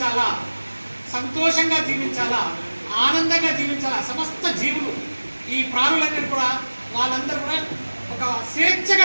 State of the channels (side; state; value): both; inverted; correlation -1.00